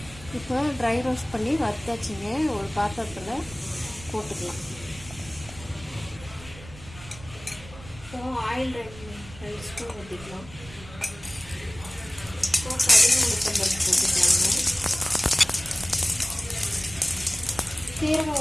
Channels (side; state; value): right; noise; rumble, 17 dB below the sound